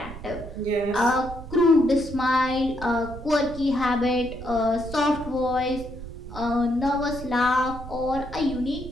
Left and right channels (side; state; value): right; noise; rumble, 12 dB below the sound